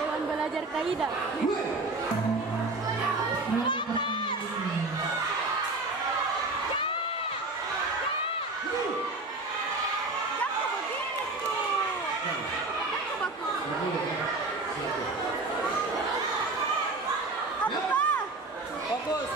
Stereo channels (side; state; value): left; quieter; 3.2 dB